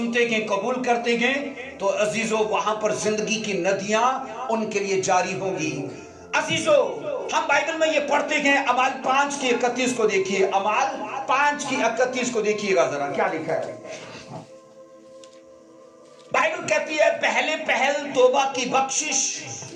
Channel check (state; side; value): identical; both; correlation 1.00